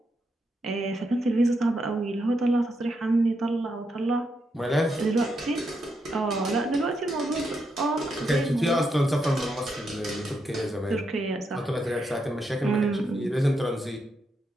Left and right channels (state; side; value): normal; both; correlation 0.81